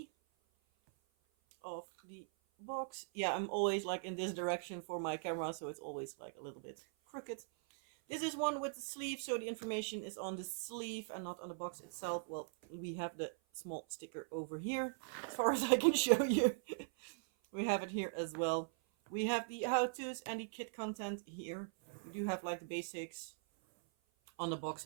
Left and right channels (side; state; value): left; silent; 51 dB below the other